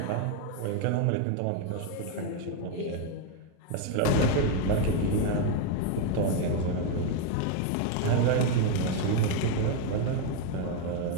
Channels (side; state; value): both; different; correlation 0.01